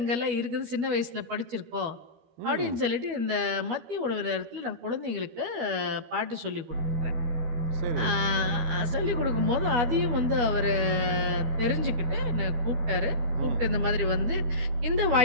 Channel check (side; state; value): left; late; 12 ms